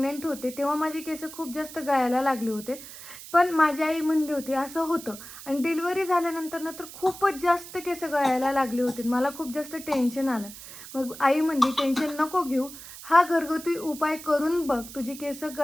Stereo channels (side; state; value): right; noise; hiss, 14 dB below the sound